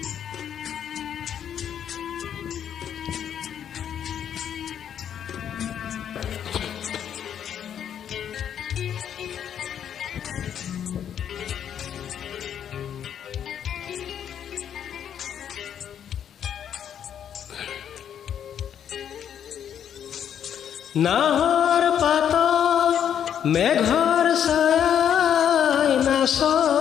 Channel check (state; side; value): quieter; right; 9.1 dB